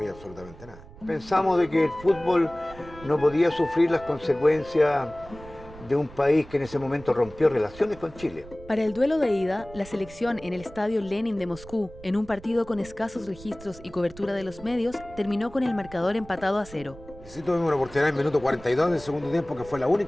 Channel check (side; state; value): right; noise; rumble, 18 dB below the sound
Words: absolutamente nada. Pensamos de que el fútbol no podía sufrir las consecuencias de un país que en ese momento rompió relaciones con Chile. Para el duelo de ida, la selección en el Estadio Lenin de Moscú, en un partido con escasos registros y cobertura de los medios, terminó con el marcador empatado a 0. Y sí tuvimos una oportunidad en el minuto 42 del segundo tiempo, que fue la